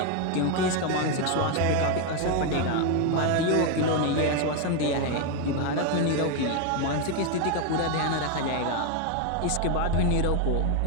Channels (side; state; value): both; different; correlation 0.01